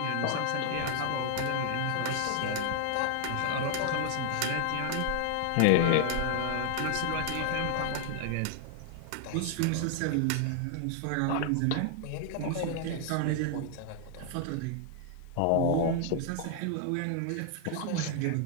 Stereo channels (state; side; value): different; both; correlation 0.00